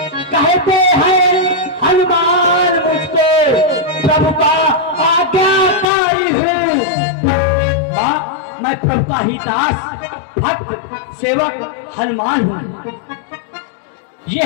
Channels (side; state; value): right; drops out; at 5.9 s